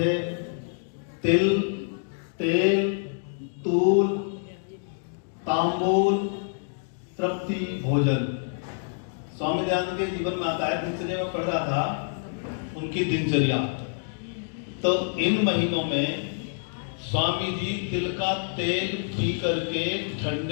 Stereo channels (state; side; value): silent; right; digital silence